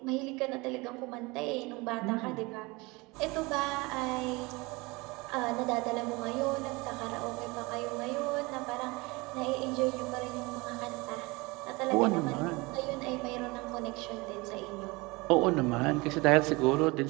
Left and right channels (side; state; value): left; quieter; 24.5 dB